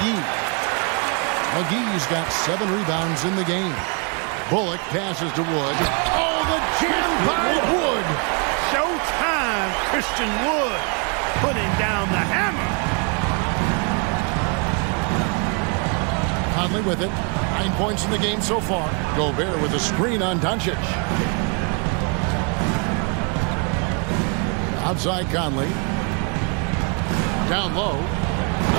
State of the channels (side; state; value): left; quieter; 35.0 dB